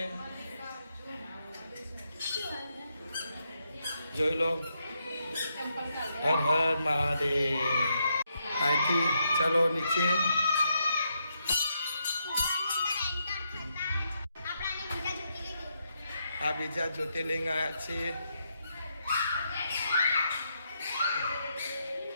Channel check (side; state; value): both; inverted; correlation -0.80